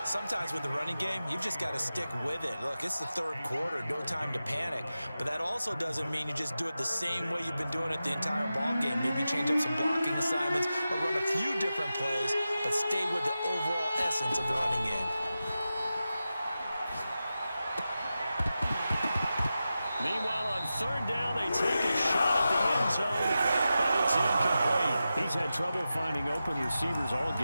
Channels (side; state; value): both; inverted; correlation -0.92